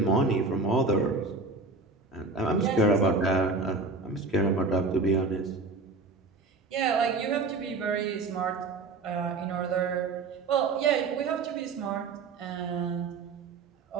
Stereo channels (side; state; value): left; quieter; 3.8 dB